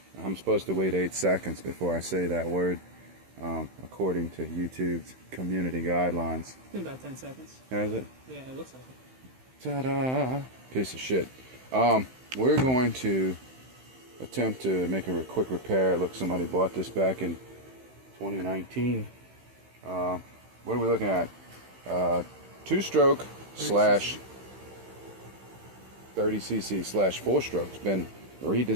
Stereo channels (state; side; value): late; left; 15 ms